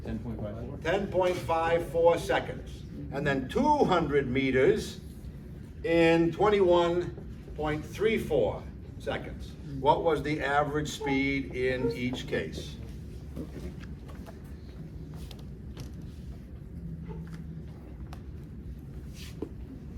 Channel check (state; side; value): identical; both; correlation 1.00